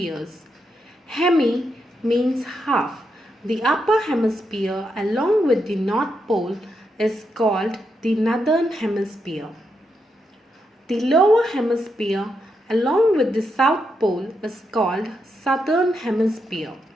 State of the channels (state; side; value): normal; both; correlation 0.83